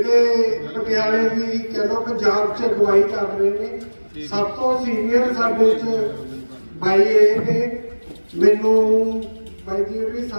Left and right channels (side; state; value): both; inverted; correlation -1.00